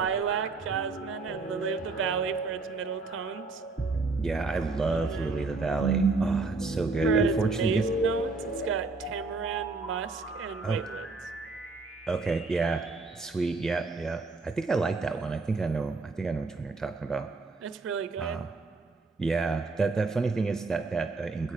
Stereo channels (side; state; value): left; quieter; 3.9 dB